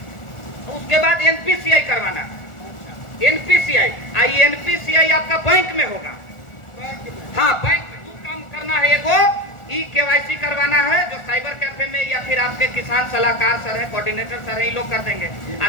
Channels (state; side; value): late; right; 1.4 ms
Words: उसके बाद NPCI करवाना, NPCI आपका बैंक में होगा। हाँ, बैंक में काम करना है। एगो ई KYC करवाना है जो साइबर कैफे में या फिर आपके किसान सलाहकार सर है, कोऑर्डिनेटर सर है, ये लोग कर देंगे। और